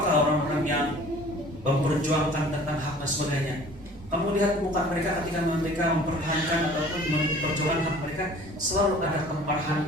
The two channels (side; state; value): both; normal; correlation 0.48